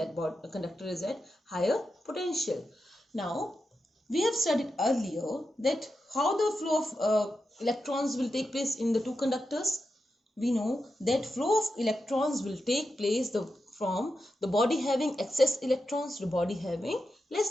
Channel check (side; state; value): both; normal; correlation 0.89